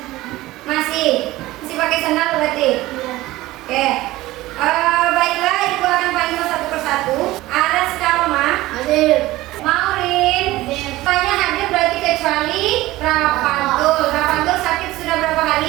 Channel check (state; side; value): quieter; left; 17.7 dB